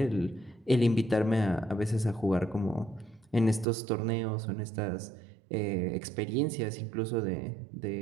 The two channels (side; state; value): left; drops out; at 3.7 s